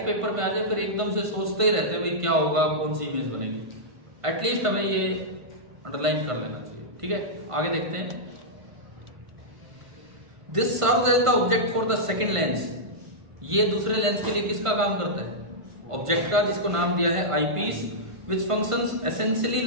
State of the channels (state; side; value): late; left; 1.5 ms